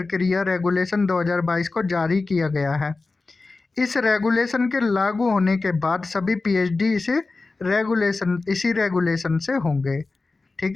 रेगुलेशन 2022 को जारी किया गया है। इस रेगुलेशन के लागू होने के बाद सभी पीएचडी इसी रेगुलेशन से होंगे,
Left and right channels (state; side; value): quieter; right; 3.6 dB